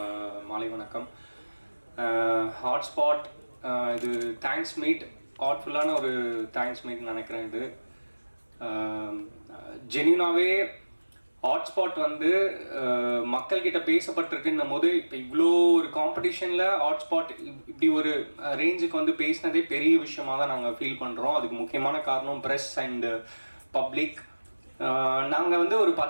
மாலை வணக்கம். ஹாட்ஸ்பாட் இது தேங்க்ஸ் மீட், ஹார்ட்ஃபுல்லான ஒரு தேங்க்ஸ் மீட் நினைக்கிறேன். இது ஜென்யூனாகவே ஹாட்ஸ்பாட் மக்கள்கிட்ட பேசப்பட்டிருக்குன்னும் போது இப்போ இவ்வளோ ஒரு காம்படிஷனில் ஹாட்ஸ்பாட் இப்படி ஒரு ரேஞ்சுக்கு பேசினதே பெரிய விஷயமாக தான் நாங்கள் ஃபீல் பண்ணுறோம். அதுக்கு முக்கியமான காரணம் ப்ரெஸ் அண்டு பப்ளிக். நாங்கள் ஒரு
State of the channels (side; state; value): both; inverted; correlation -1.00